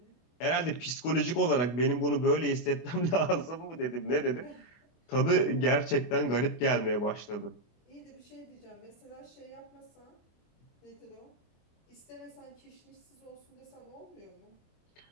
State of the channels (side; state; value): right; late; 24 ms